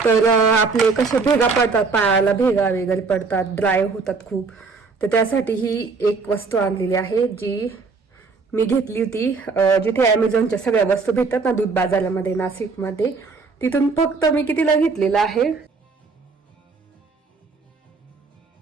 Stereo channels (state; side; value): quieter; left; 4.5 dB